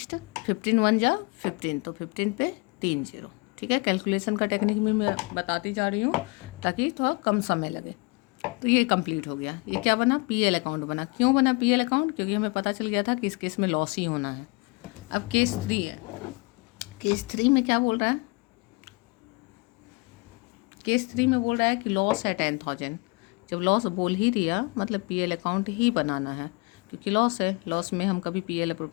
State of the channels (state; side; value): quieter; right; 28.1 dB